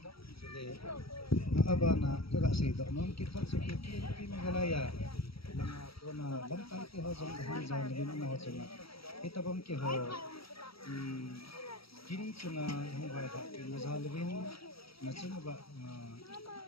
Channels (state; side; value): late; right; 0.75 ms